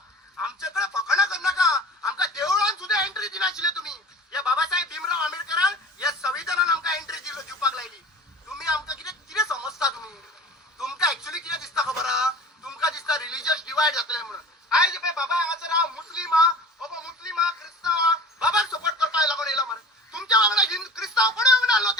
आमच्याकडे फकाणा कर नाका. आमकां देवळान सुद्धा एंट्री दिनाशिल्ले तुम्ही. या बाबासाहेब भीमराव आंबेडकरान या संविधानान आमकां एंट्री दिवपाक लायली. तुम्ही आमकां कितें समजता तुम्ही? तुमकां एक्चुअली कितें दिसता खबर आहा? तुमकां दिसता रिलिजियस डिवायड जातले म्हणून. आयज पळय बाबा हांगासर हांव मुस्लीम हा, बाबा मुस्लीम हा, क्रिस्तांव हा, बाबाक सपोर्ट करपाक लागून येयला मरे. तुमच्या वांगडा क्रिस्तांव कोणी येऊन आलो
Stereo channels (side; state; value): both; normal; correlation 0.39